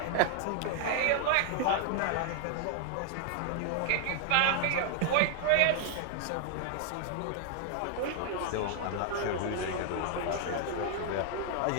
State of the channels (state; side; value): different; both; correlation 0.00